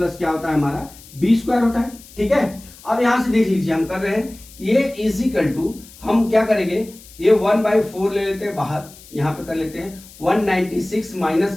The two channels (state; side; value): noise; left; hiss, 21 dB below the sound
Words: क्या होता है हमारा b स्क्वायर होता है। ठीक है, अब यहां से देख लीजिए हम कर रहे हैं a इज इक्वल टू, हम क्या करेंगे ये 1/4 ले लेते हैं बाहर, यहां पे कर लेते हैं 196 माइनस